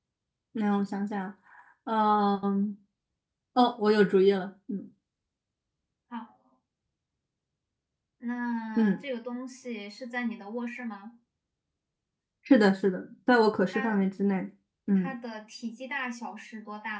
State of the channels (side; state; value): both; identical; correlation 1.00